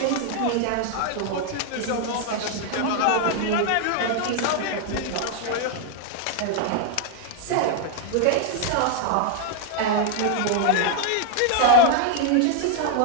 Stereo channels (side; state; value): both; different; correlation 0.00